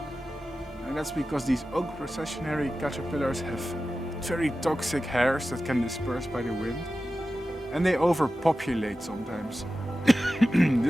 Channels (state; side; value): normal; both; correlation 0.94